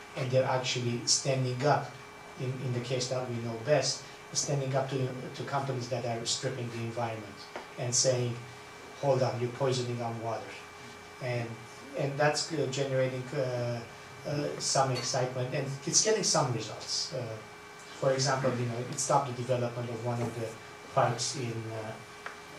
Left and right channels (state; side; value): identical; both; correlation 1.00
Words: and they're actually standing up, in the case that we know best, standing up to companies that are stripping the environment and saying, hold on, you're poisoning our water. And that's generating some excitement, and it's getting some results. For example, it stopped the development of one of the parks in